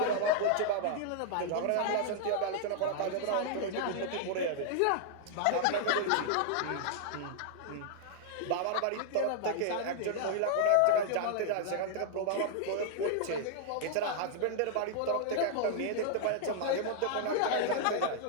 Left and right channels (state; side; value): different; both; correlation -0.01